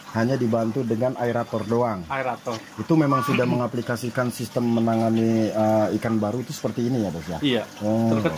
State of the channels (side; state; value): both; identical; correlation 1.00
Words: Hanya dibantu dengan aerator doang. Aerator. Itu memang sudah mengaplikasikan sistem menangani ikan baru itu seperti ini ya, Bos ya? Iya.